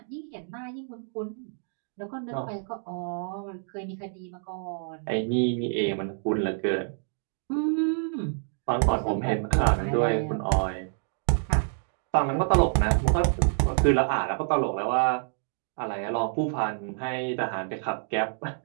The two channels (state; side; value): silent; left; digital silence